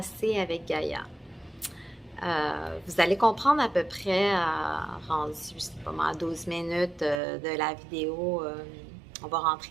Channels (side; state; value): left; drops out; at 7.2 s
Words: avec Gaïa. Vous allez comprendre à peu près, rendu, je sais pas moi, à 12 minutes de la vidéo, on va